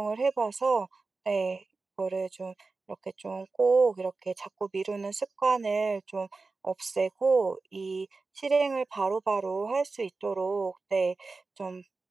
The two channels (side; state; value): left; quieter; 3.9 dB